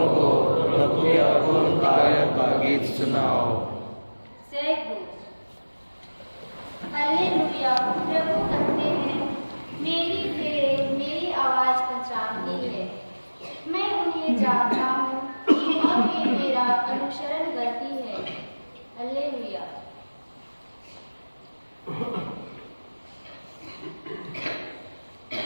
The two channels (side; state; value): both; inverted; correlation -1.00